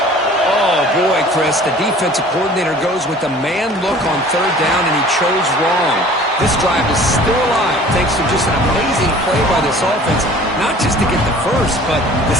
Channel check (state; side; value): normal; both; correlation 0.48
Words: Oh, boy, Chris. The defensive coordinator goes with the man look on 3rd down, and he chose wrong. This drive is still alive thanks to just an amazing play by this offense. Not just to get the first, but to